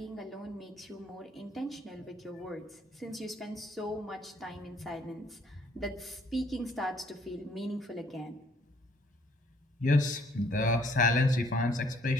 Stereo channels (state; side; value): normal; both; correlation 0.63